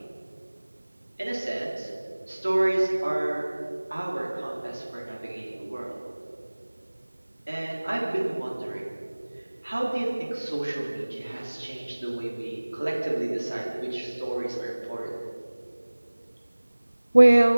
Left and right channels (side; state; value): both; inverted; correlation -1.00